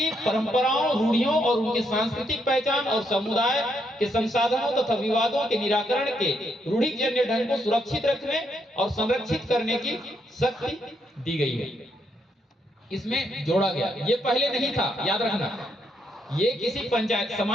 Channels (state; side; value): normal; both; correlation 0.76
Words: परंपराओं, रूढ़ियों और उनकी सांस्कृतिक पहचान और समुदाय के संसाधनों तथा विवादों के निराकरण के रूढ़िजन्य ढंग को सुरक्षित रखने और संरक्षित करने की शक्ति दी गई है। इसमें जोड़ा गया, ये पहले नहीं था, याद रखना। ये किसी पंचायत,